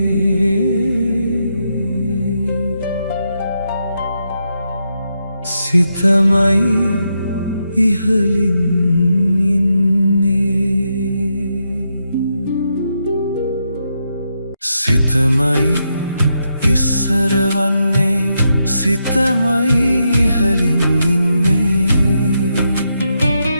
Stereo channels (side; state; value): both; inverted; correlation -0.83